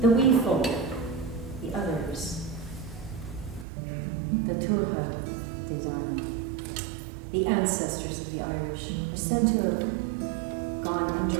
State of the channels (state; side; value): drops out; left; at 3.7 s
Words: wee folk, the others, the Tuatha De Danann, the ancestors of the Irish, are said to have gone